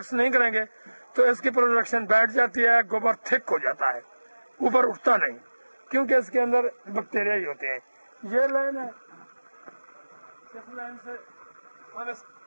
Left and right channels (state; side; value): inverted; both; correlation -1.00